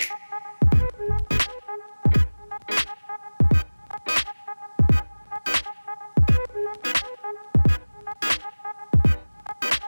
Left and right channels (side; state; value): both; inverted; correlation -1.00